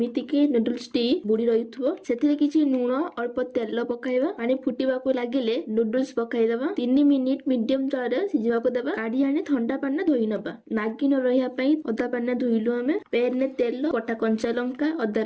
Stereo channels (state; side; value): identical; both; correlation 1.00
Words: कि नूडल्स टी बुडी रहिथबो। सेथिरे किछि लूण, अल्प तेल पकाइबा। पानी फुटिबा को लागिले नूडल्स पकाइ देबा। 3 मिनिट मीडियम तारे सिझिबा को काढ़ी आने ठंडा पानी धोई नबा। नागी न रहिया पई अदा पानी धोइलु। हमें पैन ने तेल, कटा कंचा लंका, अदा